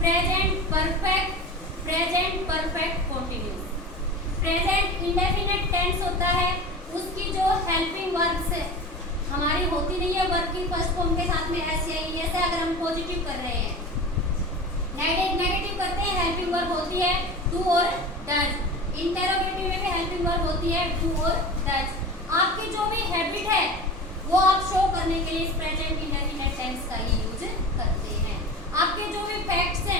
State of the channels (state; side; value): normal; both; correlation 0.32